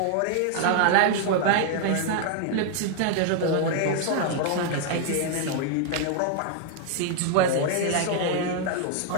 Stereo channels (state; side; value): different; both; correlation 0.00